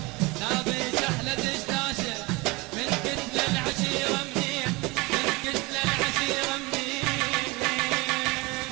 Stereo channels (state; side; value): quieter; left; 24.8 dB